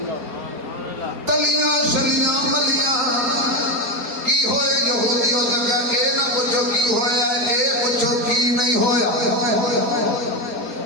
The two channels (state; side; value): late; left; 4.3 ms